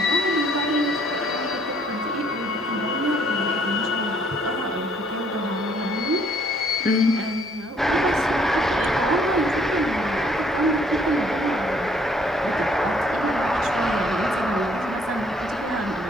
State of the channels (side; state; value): both; normal; correlation 0.63